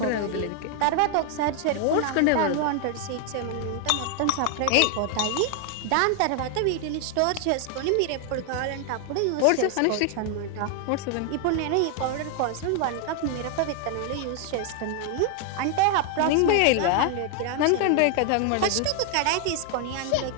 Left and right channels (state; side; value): different; both; correlation 0.00